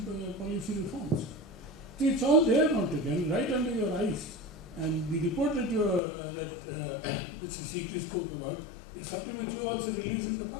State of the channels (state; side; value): drops out; right; at 6.0 s